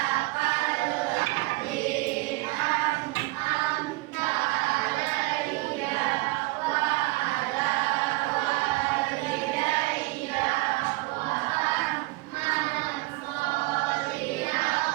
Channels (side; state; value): left; quieter; 22.1 dB